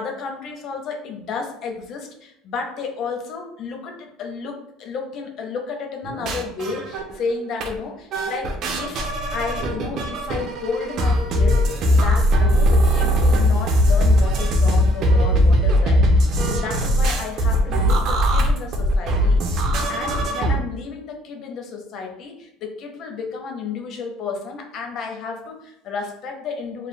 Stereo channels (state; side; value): normal; both; correlation 0.66